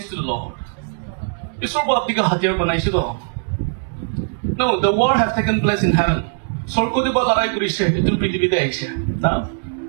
to the Lord. ঈশ্বর আপনাকে হাতিয়ার বানাইছে তো. No, the war have taken place in heaven. স্বর্গতে বা লড়াই করেছে এটুল পৃথিবীতে আইছে না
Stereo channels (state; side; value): silent; left; digital silence